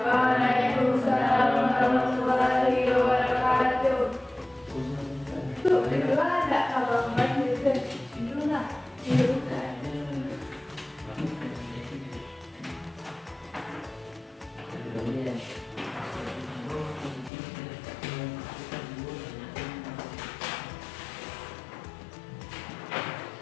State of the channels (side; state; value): right; drops out; at 17.3 s